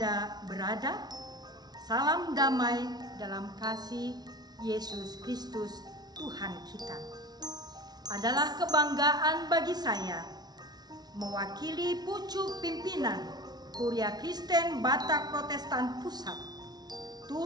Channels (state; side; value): late; left; 0.19 ms